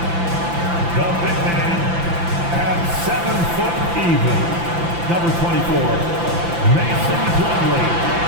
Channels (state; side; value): late; left; 5.9 ms